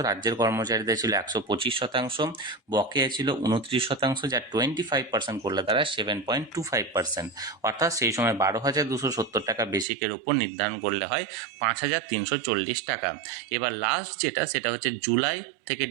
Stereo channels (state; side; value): drops out; left; at 9.9 s